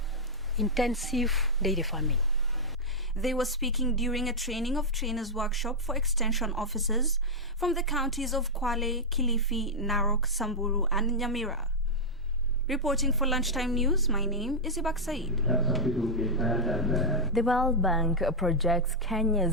intensive dairy farming. They were speaking during a training of trainers workshop for extension officers from the counties of Kwale, Kilifi, Narok, Samburu and Nyamira. Reporting for Lunchtime News, my name is Ibak Said. The World Bank projects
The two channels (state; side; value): normal; both; correlation -0.05